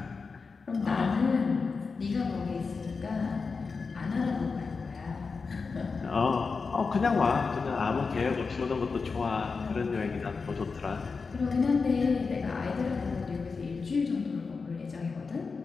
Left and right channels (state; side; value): quieter; right; 4.7 dB